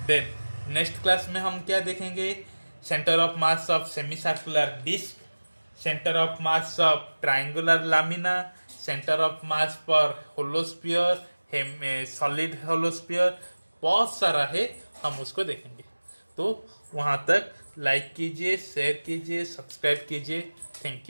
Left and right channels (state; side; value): inverted; both; correlation -1.00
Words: देन नेक्स्ट क्लास में हम क्या देखेंगे, centre of mass of semi circular disc, centre of mass of triangular lamina, centre of mass पर होलोस्फीयर, सॉलिड होलोस्फीयर, बहुत सारा है, हम उसको देखेंगे। तो वहाँ तक लाइक कीजिए, शेयर कीजिए, सब्सक्राइब कीजिए। Thank